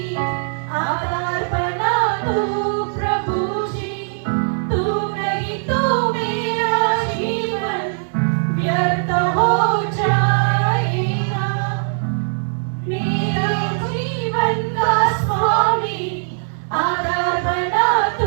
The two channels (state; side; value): silent; left; digital silence